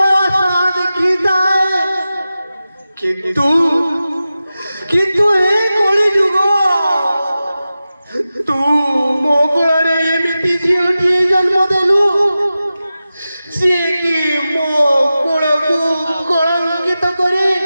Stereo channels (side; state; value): both; inverted; correlation -0.94